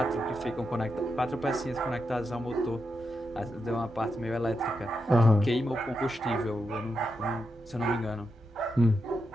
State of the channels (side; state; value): both; normal; correlation 0.85